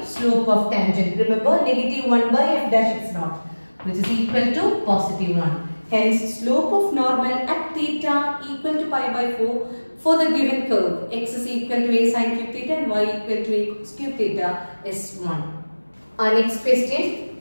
slope of tangent. Remember, negative 1 by f dash x naught, which is equal to positive 1. Hence, slope of normal at theta equal to pi by 4 for the given curve. X is equal to a sin cube theta and y equal to a cos cube theta is 1. Our next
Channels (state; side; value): inverted; both; correlation -1.00